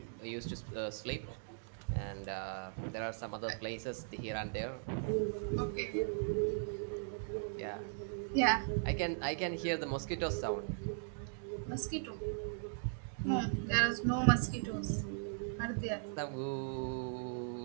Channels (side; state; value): left; silent; digital silence